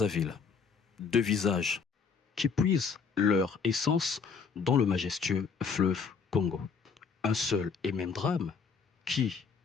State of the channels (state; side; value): quieter; right; 5.6 dB